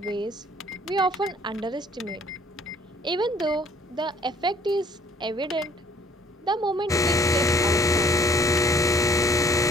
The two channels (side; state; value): both; normal; correlation 0.58